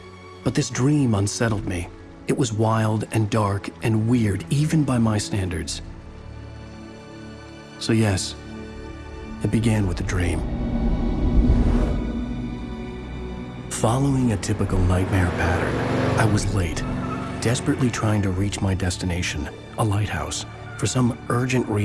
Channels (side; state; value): both; identical; correlation 1.00